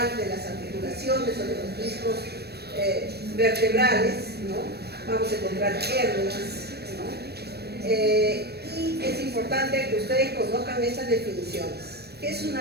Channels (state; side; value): late; left; 0.47 ms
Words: de las articulaciones o de los discos vertebrales, ¿no? Vamos a encontrar hernias, ¿no? Y es importante que ustedes conozcan estas definiciones. ¿Qué es